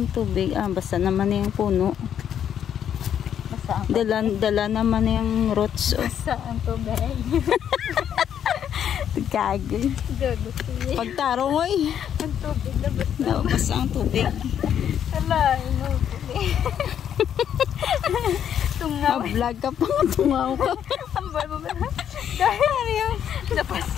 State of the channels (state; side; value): quieter; right; 9.2 dB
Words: tubig. Basa naman na yung puno. Dala naman na yung roots. Basa ang tubig. Kagay. Pagtarong oy. Ang tubig na basa. No, basa ang tubig. Ala, ino tubig. Tungaw. Vlog ka pa, tungaw ka. Ambal mo ba? Dahil yung